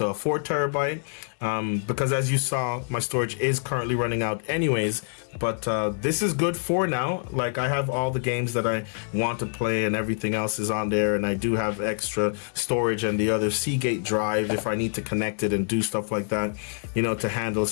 a 4 terabyte because, as you saw, my storage is currently running out anyways. But this is good for now. Like, I have all the games that I want to play and everything else is on there, and I do have extra storage and the other Seagate drive if I need to connect it and do stuff like that, you know, to handle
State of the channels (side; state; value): right; silent; 58 dB below the other